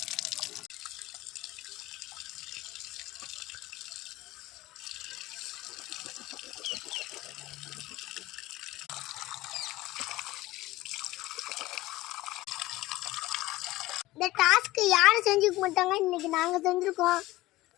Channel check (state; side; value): quieter; right; 18.0 dB